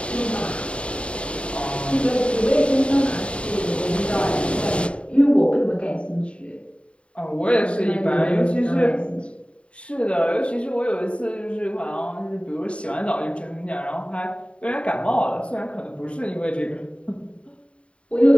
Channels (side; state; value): right; late; 0.059 ms